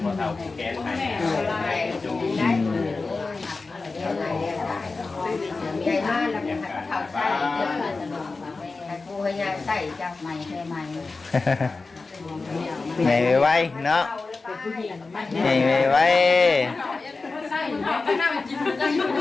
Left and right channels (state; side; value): quieter; right; 3.9 dB